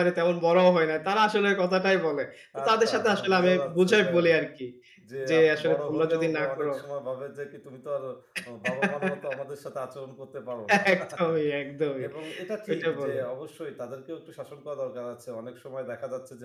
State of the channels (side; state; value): both; identical; correlation 1.00